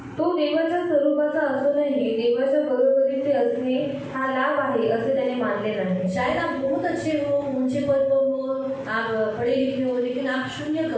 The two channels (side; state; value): both; identical; correlation 1.00